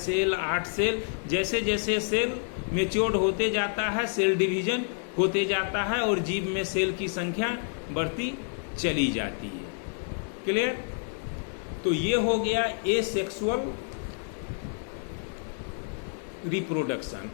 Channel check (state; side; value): silent; right; 59 dB below the other